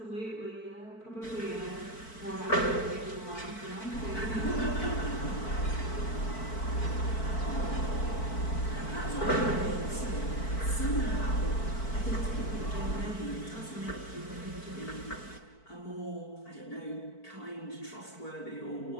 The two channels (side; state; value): right; late; 4.5 ms